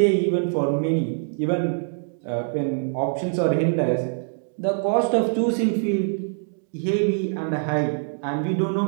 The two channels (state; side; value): silent; left; digital silence